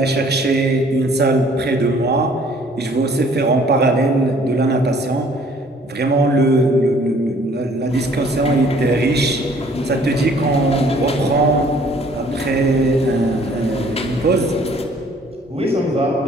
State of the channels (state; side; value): normal; both; correlation 0.57